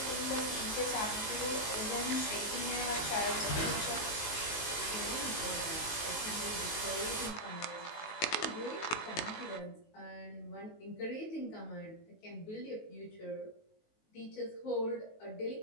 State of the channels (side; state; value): right; late; 19 ms